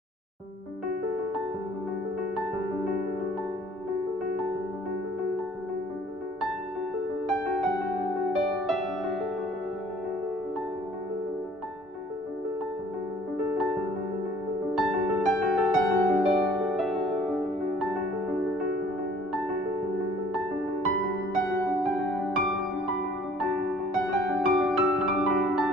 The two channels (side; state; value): both; normal; correlation 0.55